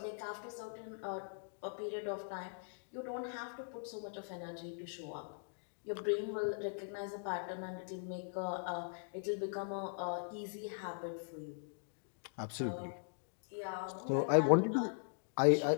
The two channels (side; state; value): right; silent; digital silence